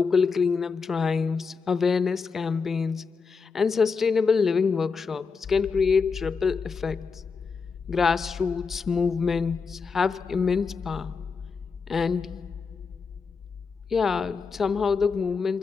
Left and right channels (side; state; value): right; quieter; 5.2 dB